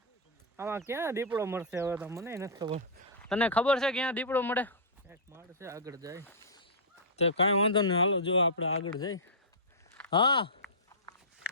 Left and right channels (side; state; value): both; normal; correlation -0.15